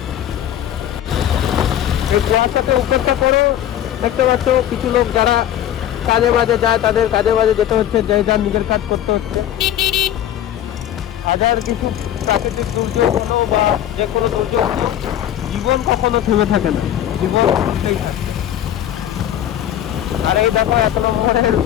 এই কুয়াশাকে উপেক্ষা করো, দেখতে পাচ্ছ কিছু লোক যারা কাজে বাজে যায়, তাদের কাজে বাজে যেতে হচ্ছে, যে যার নিজের কাজ করতে হচ্ছে। হাজার কিছু প্রাকৃতিক দুর্যোগ হলো বা যে কোনো দুর্যোগ হলো, জীবন কখনো থেমে থাকে না, জীবন চলতেই থাকে। আর এই দেখো 1 নম্বরের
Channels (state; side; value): quieter; right; 11.2 dB